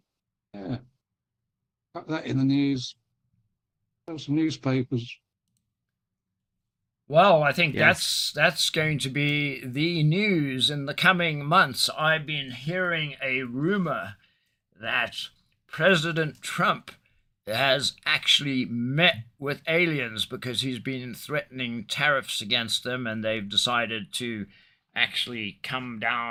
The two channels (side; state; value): both; identical; correlation 1.00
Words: Yeah, put that in the news. Have some newspapers. Well, I think Yes. that's going to be the news in the coming months. I've been hearing a rumor that President Trump has actually met with aliens because he's been threatening tariffs against them, and they've decided to actually come